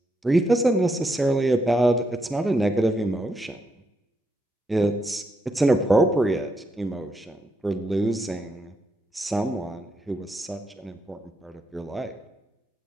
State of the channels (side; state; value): both; normal; correlation 0.79